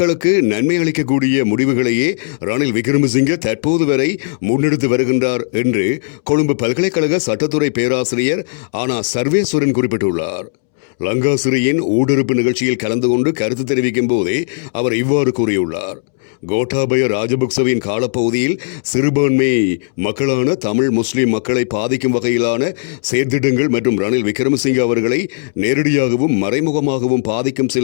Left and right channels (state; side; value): silent; right; 69 dB below the other